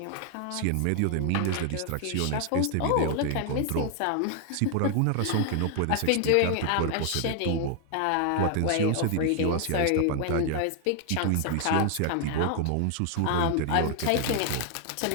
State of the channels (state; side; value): different; both; correlation 0.00